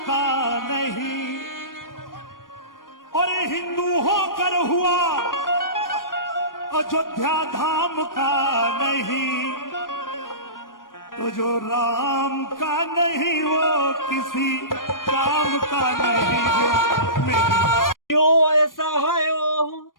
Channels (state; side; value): late; right; 0.90 ms